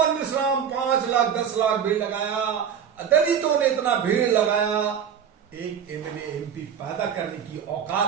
मिश्राम 5 लाख 10 लाख भीड़ लगाया, दलितों ने इतना भीड़ लगाया। एक एमएलए एमपी पैदा करने की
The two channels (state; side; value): quieter; left; 8.0 dB